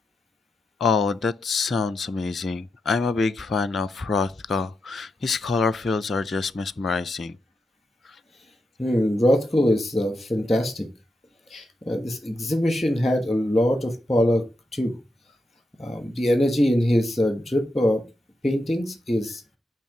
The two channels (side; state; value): both; normal; correlation 0.86